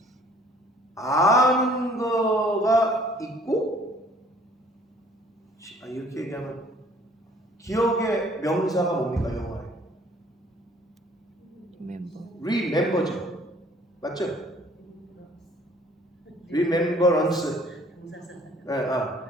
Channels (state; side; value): normal; both; correlation 0.56